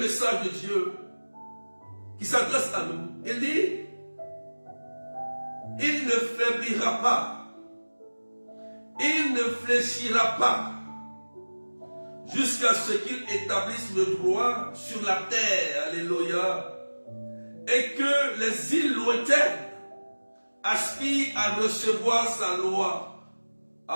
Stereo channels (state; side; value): inverted; both; correlation -1.00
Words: de Dieu qui s'adresse à nous. Il dit, il ne faiblira pas. Il ne fléchira pas jusqu'à ce qu'il établisse le droit sur la terre. Alléluia. Et que les îles lointaines aspirent à recevoir sa loi.